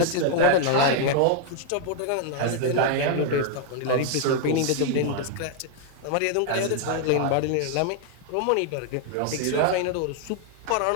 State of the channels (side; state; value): both; different; correlation 0.00